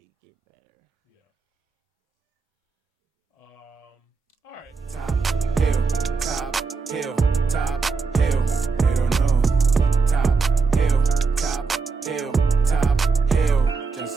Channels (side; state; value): left; quieter; 4.6 dB